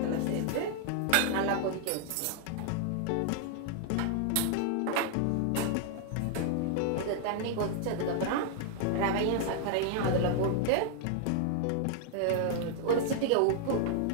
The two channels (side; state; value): both; different; correlation 0.00